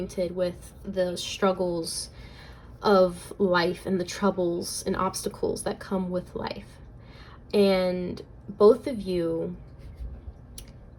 with the struggles of life and the troubles and obstacles that come with life. And both of you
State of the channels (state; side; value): identical; both; correlation 1.00